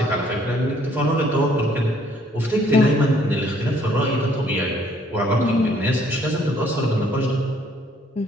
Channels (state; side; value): normal; both; correlation 0.63